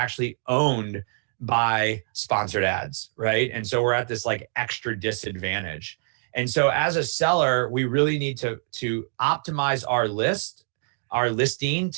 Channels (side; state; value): left; silent; digital silence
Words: owned by sponsored ads, right? And so we're at this like extra disadvantage. And so as a seller, we really need to optimize our listing